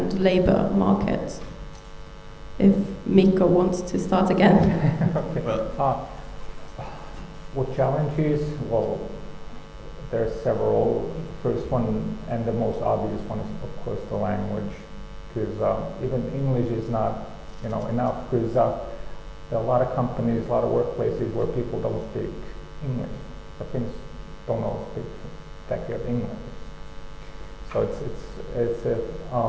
labour markets? If Mika wants to start again. Okay. What challenges? Well, there are several. The first one and the most obvious one is, of course, the language, because even English is not, enough. Because there are a lot of companies, a lot of workplaces where people don't speak English. The Finns don't all speak that good English. So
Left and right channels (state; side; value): identical; both; correlation 1.00